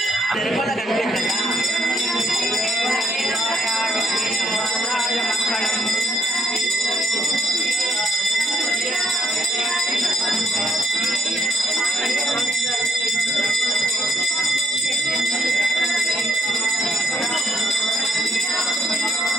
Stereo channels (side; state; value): both; normal; correlation 0.72